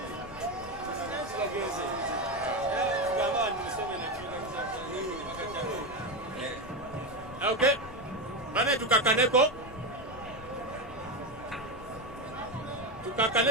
Okay, bane tukakaneko.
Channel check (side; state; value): left; noise; rumble, 17 dB below the sound